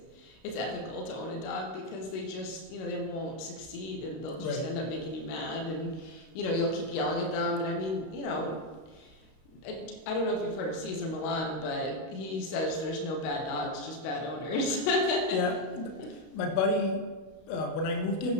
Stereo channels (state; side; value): late; right; 32 ms